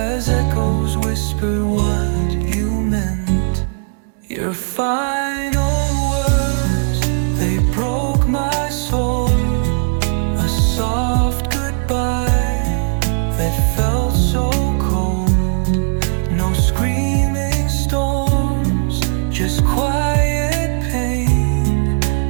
echoes whispered what you meant. Your final words, they broke my soul. A soft goodbye that felt so cold. No screaming storms, just quiet pain.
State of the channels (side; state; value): left; silent; digital silence